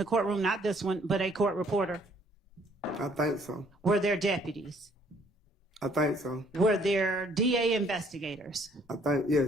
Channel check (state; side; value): normal; both; correlation 0.62